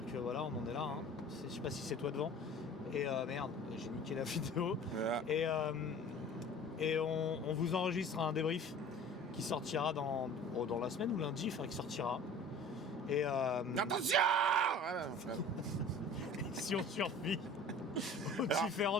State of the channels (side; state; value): both; normal; correlation 0.43